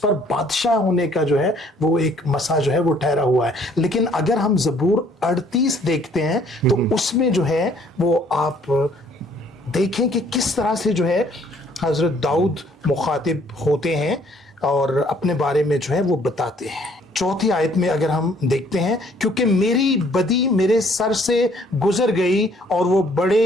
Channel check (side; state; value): both; normal; correlation 0.61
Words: बादशाह होने का जो है वो एक मसा जो है वो ठहरा हुआ है। लेकिन अगर हम ज़बूर 38 देखते हैं तो उसमें जो है वो आप देखें कि किस तरह से जो है हजरत दाऊद मुखातिब होते हैं और अपने बारे में जो है वो बताते हैं। 4थी आयत में अगर हम देखते हैं, क्योंकि मेरी बदी मेरे सर से गुजर गई और वो